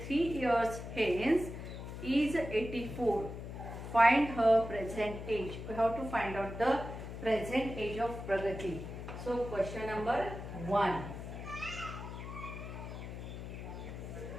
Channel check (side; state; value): left; noise; hum, 9 dB below the sound